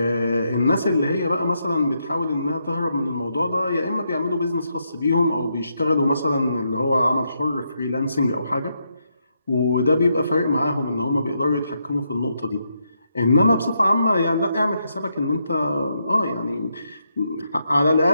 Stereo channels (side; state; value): both; inverted; correlation -0.80